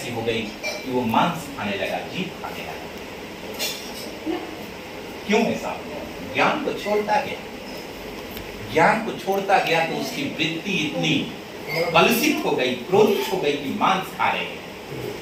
हो गई कि वो मांस खाने लगा, जीव खाने लगा। क्यों ऐसा हुआ? ज्ञान को छोड़ता गया, ज्ञान को छोड़ता गया तो उसकी वृत्ति इतनी कलुषित हो गई, क्रोधित हो गई कि मांस खा रहे हैं,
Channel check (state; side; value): identical; both; correlation 1.00